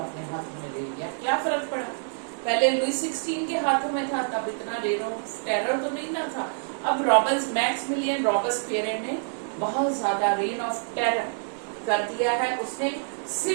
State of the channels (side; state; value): left; silent; digital silence